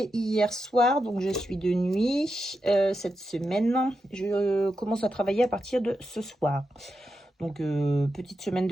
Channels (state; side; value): normal; both; correlation 0.87